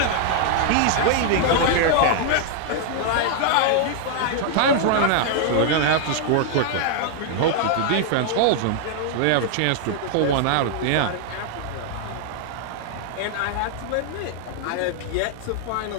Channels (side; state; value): both; different; correlation 0.00